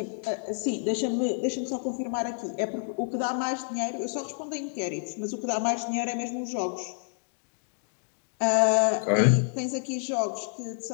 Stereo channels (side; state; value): right; silent; 59 dB below the other